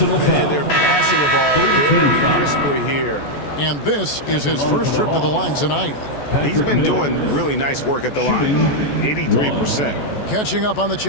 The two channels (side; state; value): right; late; 14 ms